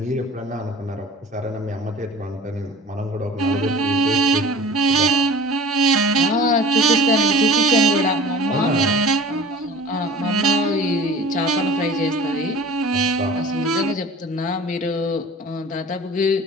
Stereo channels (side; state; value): both; normal; correlation 0.41